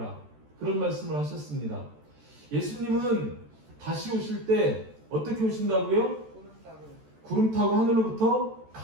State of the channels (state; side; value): late; left; 14 ms